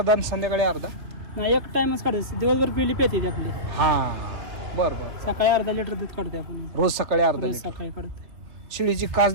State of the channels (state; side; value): late; left; 3.0 ms